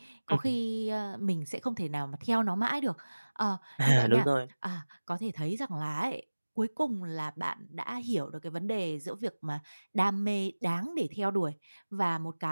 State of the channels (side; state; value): both; inverted; correlation -1.00